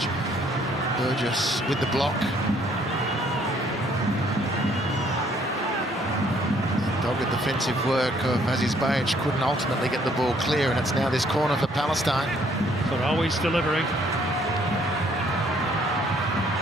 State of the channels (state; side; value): normal; both; correlation 0.64